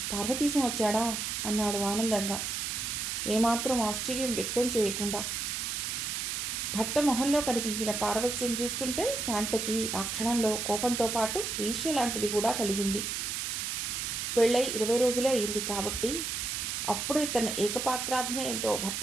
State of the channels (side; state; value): right; noise; hiss, 2 dB below the sound